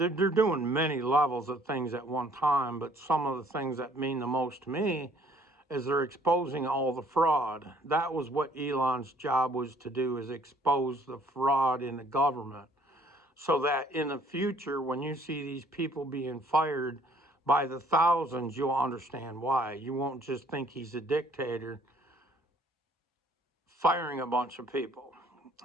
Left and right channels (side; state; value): both; normal; correlation 0.59